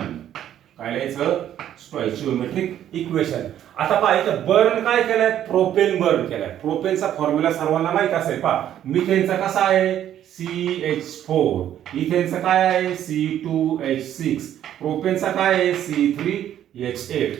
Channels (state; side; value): quieter; left; 11.0 dB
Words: काय लिहायचं स्टॉइचियोमेट्रिक इक्वेशन. आता पहा इथं बर्न काय केलंय प्रोपेन बर्न केलाय. प्रोपेनचा फॉर्म्युला सर्वांना माहित असेल मिथेनचा कसा आहे CH4 इथेनचा काय आहे C2H6 प्रोपेनचा काय आहे C3H8